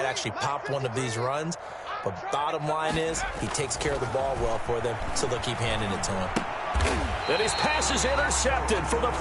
actually pop one of these runs. But bottom line is he takes care of the ball well for them, so they'll keep handing it to him. And his pass is intercepted for the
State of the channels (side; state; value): both; identical; correlation 1.00